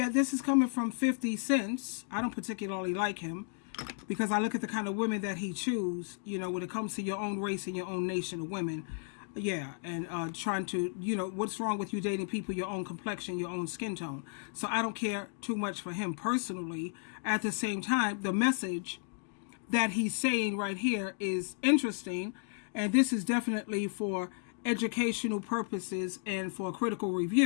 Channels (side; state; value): right; silent; 55 dB below the other